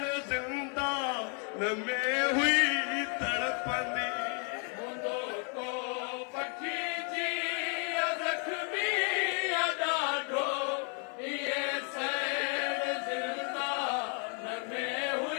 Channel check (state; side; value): quieter; right; 39.6 dB